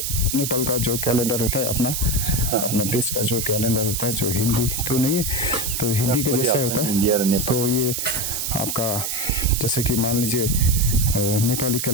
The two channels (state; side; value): noise; right; hiss, 2 dB below the sound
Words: नेपाल का जो कैलेंडर होता है, अपना देश का जो कैलेंडर होता है, जो हिंदी तो नहीं है, तो हिंदी के जैसा होता है, तो ये आपका जैसे कि मान लीजिए नेपाली